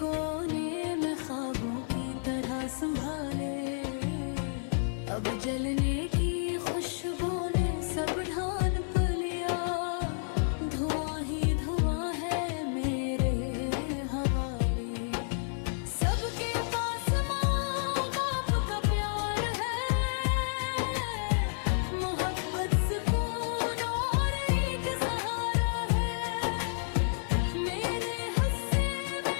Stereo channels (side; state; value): right; silent; digital silence